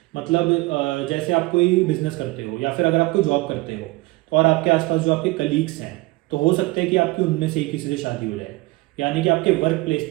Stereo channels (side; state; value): left; quieter; 22.2 dB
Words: मतलब जैसे आप कोई बिजनेस करते हो या फिर अगर आप कोई जॉब करते हो, तो और आपके आसपास जो आपके कलीग्स हैं, तो हो सकता है कि आपकी उनमें से किसी से शादी हो जाए, यानी कि आपके वर्क प्लेस